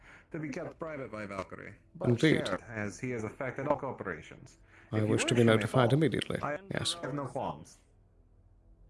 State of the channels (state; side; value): identical; both; correlation 1.00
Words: be kept private by Valkyrie. But Indeed. shared, as he has affected all corporations. I If you wish to be you may notified follow. immediately. I Yes. have no qualms.